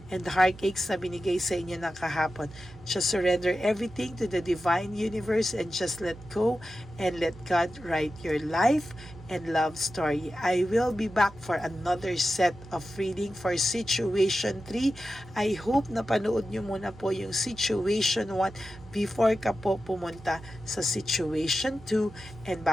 and the heartaches na binigay sa inyo ng kahapon. Just surrender everything to the divine universe and just let go and let God write your life and love story. I will be back for another set of reading for Situation 3. I hope na panood nyo muna po yung Situation 1 before ka po pumunta sa Situation 2 and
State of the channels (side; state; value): right; noise; hum, 19 dB below the sound